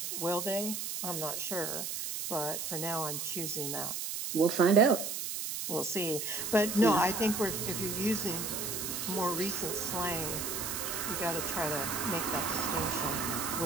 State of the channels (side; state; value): right; noise; hiss, 4 dB below the sound